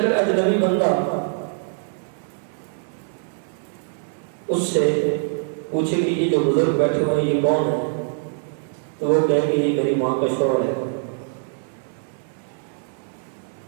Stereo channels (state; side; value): silent; left; 63 dB below the other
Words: اجنبی بندہ اس سے پوچھے کہ یہ جو بزرگ بیٹھے ہوئے یہ کون ہے، تو وہ کہے کہ یہ میری ماں کا شوہر ہے۔